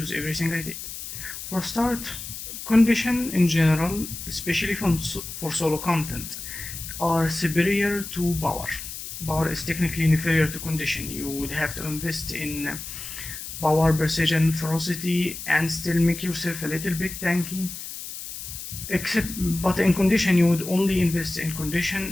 everything I did. For start, condition in general, especially for solo content, are superior to power. Power is technically inferior to condition. You would have to invest in power, precision, ferocity, and still make yourself a little bit tanky. But in condition, you would only invest in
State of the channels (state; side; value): noise; left; hiss, 9 dB below the sound